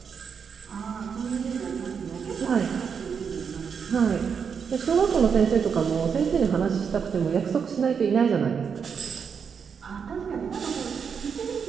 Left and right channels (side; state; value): left; quieter; 6.5 dB